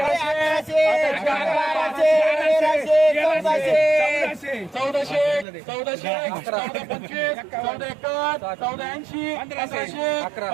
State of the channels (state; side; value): drops out; left; at 5.5 s